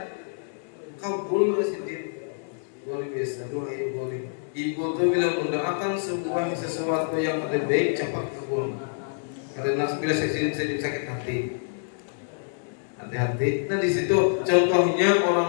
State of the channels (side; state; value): right; silent; digital silence